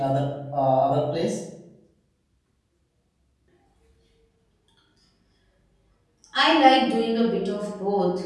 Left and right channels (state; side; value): identical; both; correlation 1.00